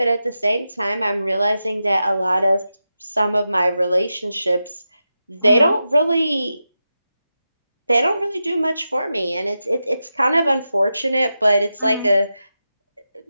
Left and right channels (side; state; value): both; inverted; correlation -0.90